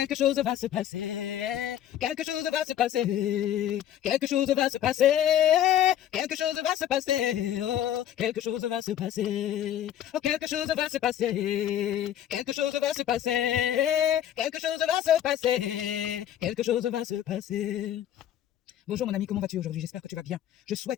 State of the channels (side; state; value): right; quieter; 10.9 dB